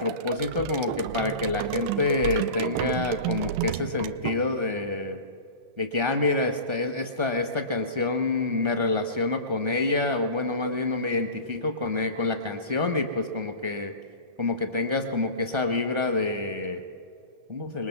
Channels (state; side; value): late; left; 1.3 ms